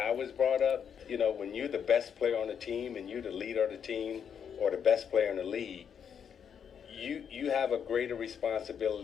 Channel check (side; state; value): right; quieter; 7.7 dB